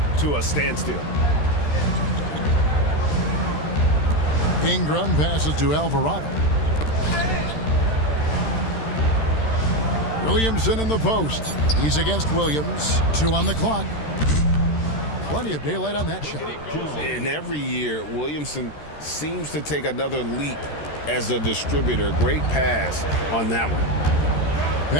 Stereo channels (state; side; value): late; right; 13 ms